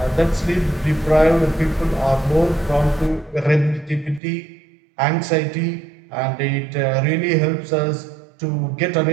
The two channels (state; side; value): drops out; left; at 4.2 s